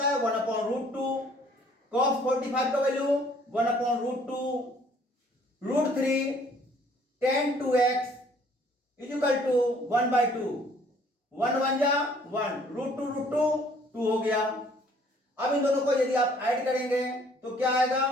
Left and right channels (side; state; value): both; normal; correlation 0.59